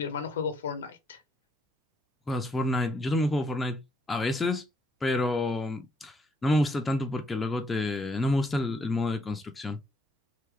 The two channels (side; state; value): both; normal; correlation 0.73